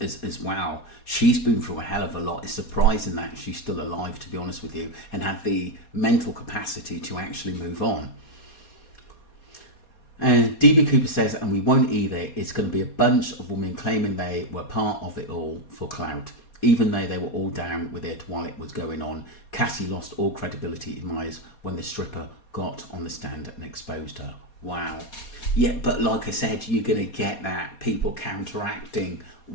well. She's been through a hell of a lot. It's surprising that she's still alive, to be honest with you, and had the mental capacity to actually move on. And DB Cooper says, and we won't either, it's going to be a bunch of women claiming they were part of it all for clout. Even though they were all down with it while it was going on, Cassie lost all credibility in my eyes when the stripper got on the stand and exposed her. Wow. Yeah, but like I said, you're going to get that, people counteracting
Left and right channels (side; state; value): right; late; 4.2 ms